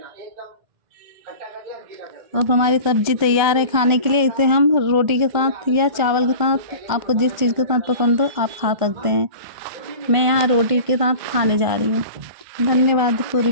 एकदम खट्टा कर दिया गीला कर। अब हमारी सब्जी तैयार है खाने के लिए। इसे हम रोटी के साथ या चावल के साथ, आपको जिस चीज़ के साथ पसंद हो आप खा सकते हैं। मैं यहाँ रोटी के साथ खाने जा रही हूँ। धन्यवाद पूरी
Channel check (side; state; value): left; late; 1.4 ms